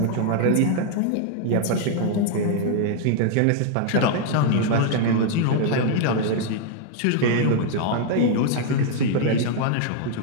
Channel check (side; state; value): both; different; correlation 0.00